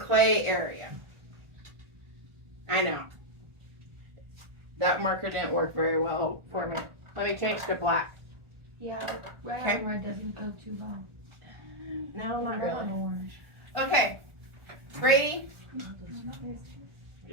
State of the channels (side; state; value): left; late; 1.4 ms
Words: area. I know. That marker didn't work very well for me. Let me change to black. Yeah, red Okay. on red doesn't go too well. No, not Red on really. orange. Okay, Brady,